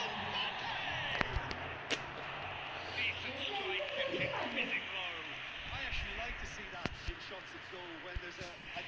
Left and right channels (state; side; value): identical; both; correlation 1.00